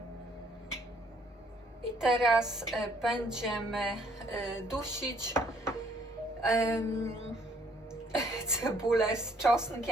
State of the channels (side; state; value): both; normal; correlation 0.64